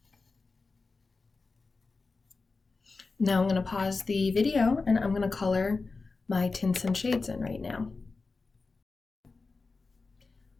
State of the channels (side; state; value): right; quieter; 4.0 dB